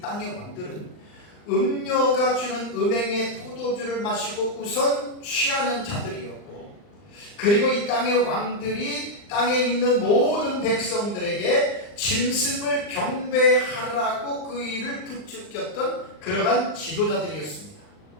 왕들은 음녀가 주는 음행의 포도주를 마시고 우선 취하는 자들이었고, 그리고 이 땅의 왕들이 땅에 있는 모든 백성들에게 짐승을 경배하라고 그 일을 부추겼던 그러한 지도자들이었습니다.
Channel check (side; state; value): right; late; 39 ms